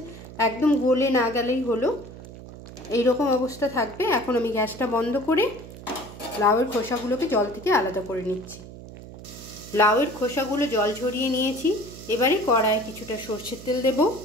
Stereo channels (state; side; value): noise; right; hum, 15 dB below the sound